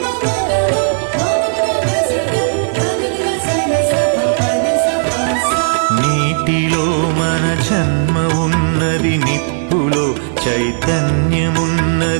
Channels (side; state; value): left; silent; digital silence